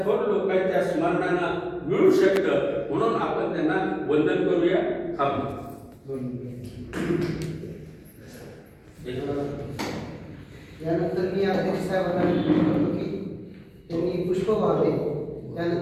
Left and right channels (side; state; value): both; identical; correlation 1.00